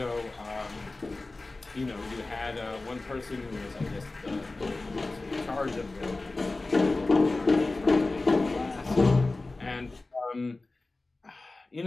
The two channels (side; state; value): right; quieter; 3.2 dB